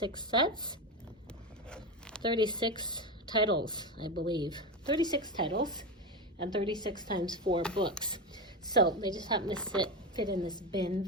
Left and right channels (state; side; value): normal; both; correlation 0.17